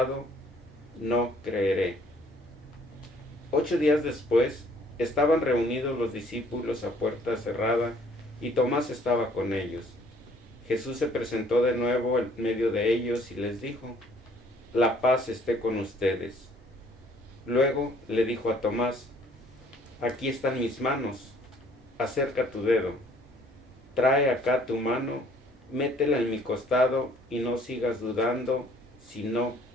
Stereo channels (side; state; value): both; normal; correlation 0.59